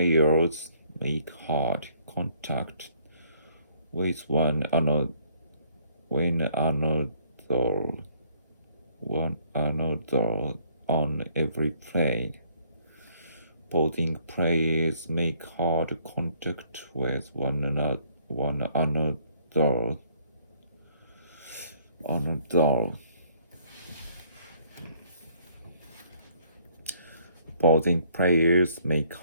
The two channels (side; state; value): both; inverted; correlation -0.63